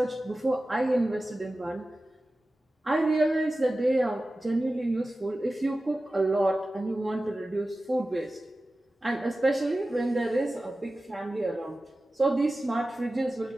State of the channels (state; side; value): normal; both; correlation 0.95